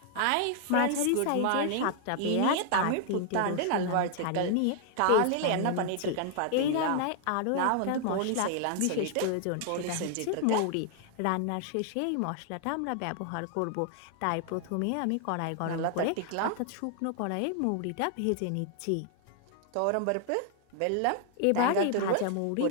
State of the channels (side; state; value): both; different; correlation 0.00